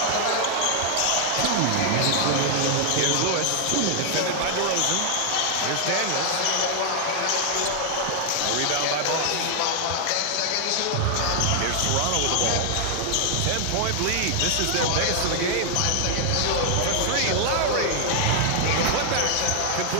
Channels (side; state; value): both; different; correlation 0.00